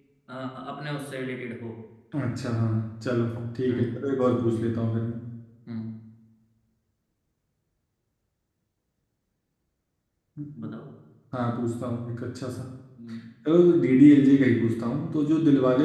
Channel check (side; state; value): both; identical; correlation 1.00